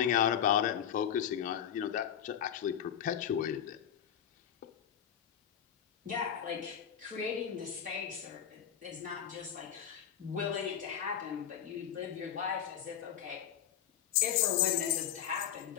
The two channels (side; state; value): right; quieter; 9.4 dB